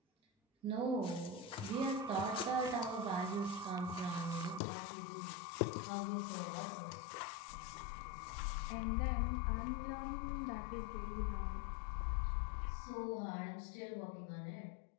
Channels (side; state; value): right; drops out; at 4.6 s